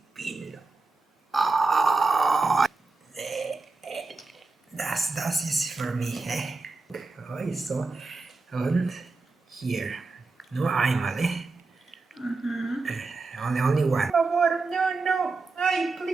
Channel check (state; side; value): quieter; left; 3.8 dB